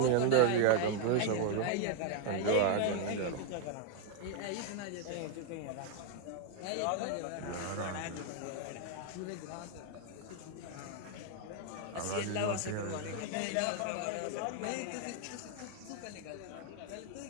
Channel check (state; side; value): different; both; correlation 0.00